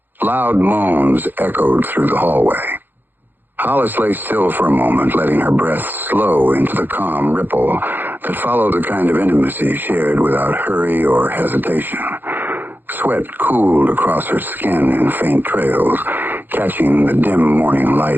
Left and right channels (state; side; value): late; left; 0.090 ms